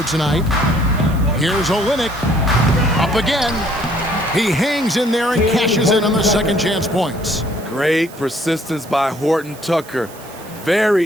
tonight. Here's Olynyk. Up again. He hangs in there and cashes in on the second chance points. Great persistence by Horton Tucker.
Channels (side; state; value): right; noise; hiss, 20 dB below the sound